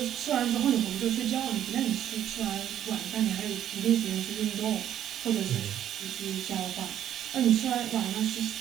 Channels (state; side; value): quieter; left; 10.7 dB